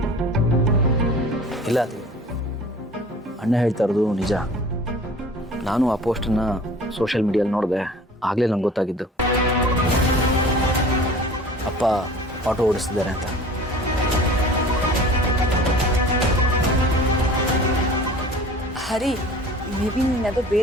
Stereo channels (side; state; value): both; normal; correlation 0.44